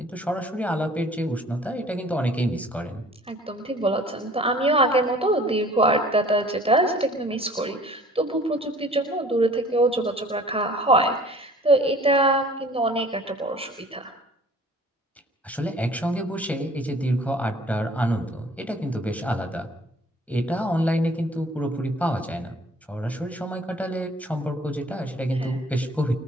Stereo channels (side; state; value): both; normal; correlation 0.51